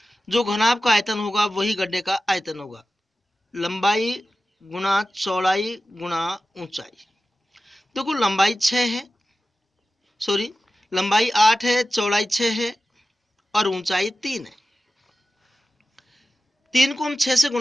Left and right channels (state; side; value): normal; both; correlation 0.94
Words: जो घनाभ का आयतन होगा वही गड्ढे का आयतन होगा। लंबाई गुणा चौड़ाई गुणा ऊंचाई। देखो लंबाई 6 है, सॉरी लंबाई 8 है, चौड़ाई 6 है और ऊंचाई 3 है। 3 को हम 6 से